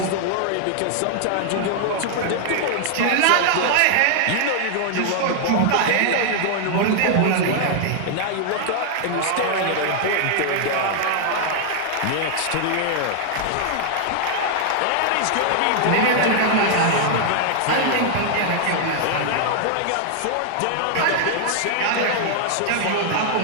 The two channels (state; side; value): different; both; correlation 0.00